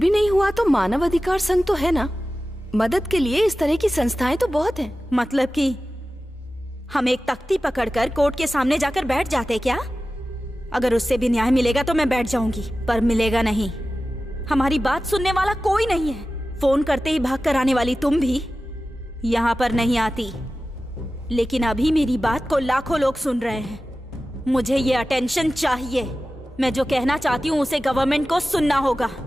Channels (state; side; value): normal; both; correlation 0.95